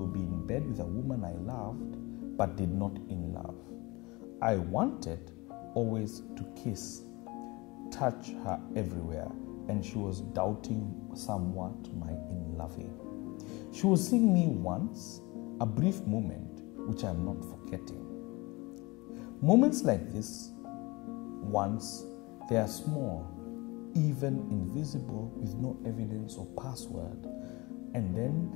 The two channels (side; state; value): right; quieter; 24.2 dB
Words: be in bed with a woman I loved, but did not in love. I wanted always to kiss, touch her everywhere, and she was doubting somewhat my in-loving. She was seeing me once, a brief moment, which I'm not forgetting. Moments like this, once, they are small, even invisible with no evidence or password, and then